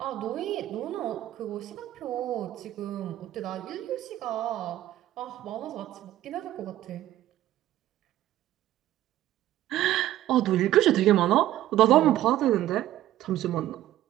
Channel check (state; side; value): quieter; left; 13.9 dB